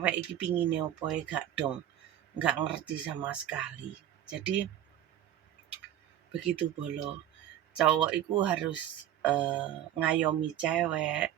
iki pingine opo gak dong. Gak ngerti sama sekali. Jadi begitu bolo. Cowok iku harus ngayomi cewek,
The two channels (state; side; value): quieter; left; 11.2 dB